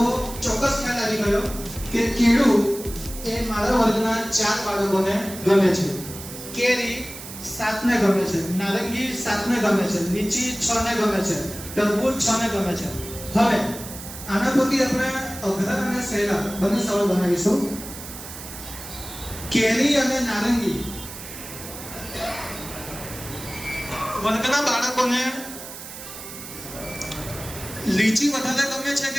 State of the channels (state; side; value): noise; right; hiss, 12 dB below the sound